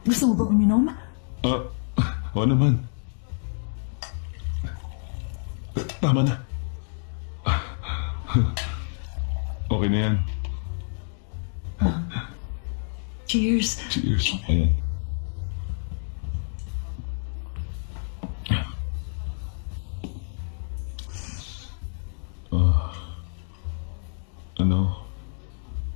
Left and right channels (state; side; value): silent; right; digital silence